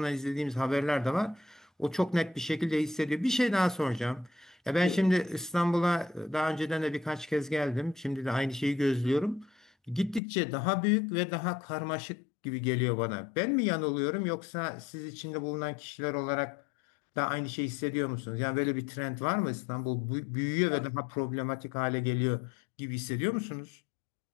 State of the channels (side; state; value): right; drops out; at 10.2 s